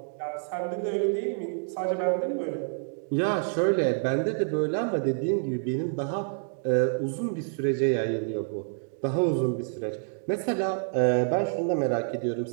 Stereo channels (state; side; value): silent; left; digital silence